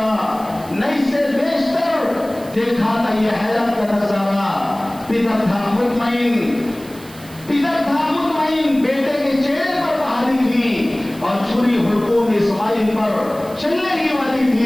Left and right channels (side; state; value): right; noise; hiss, 21 dB below the sound